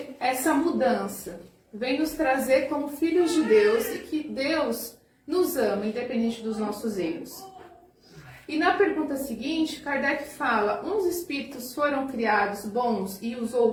a essa mudança. Vem nos trazer como filhos de Deus e que Deus nos ama, independente dos nossos erros. E na pergunta seguinte, Kardec fala: uns espíritos foram criados bons e os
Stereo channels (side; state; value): both; identical; correlation 1.00